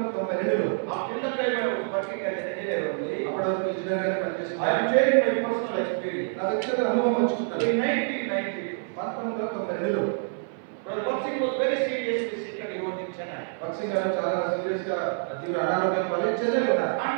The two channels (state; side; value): silent; left; 57 dB below the other